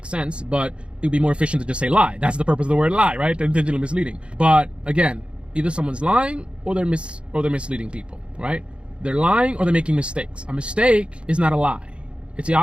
sense, but it would be more efficient to just say lie. That's the purpose of the word lie, right? Intentionally misleading. But again, either someone's lying or they're misleading people, right? They're lying or they're making mistakes. A mistake is not a lie. It's the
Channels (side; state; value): left; late; 0.057 ms